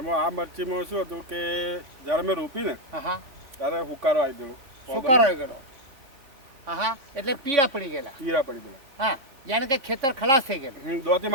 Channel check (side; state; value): left; late; 3.6 ms